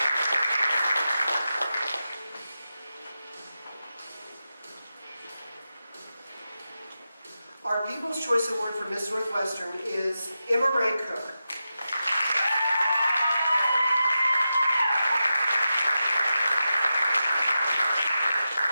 Our People's Choice Award for Miss Northwestern is Emma Ray Cook.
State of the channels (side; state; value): both; inverted; correlation -0.91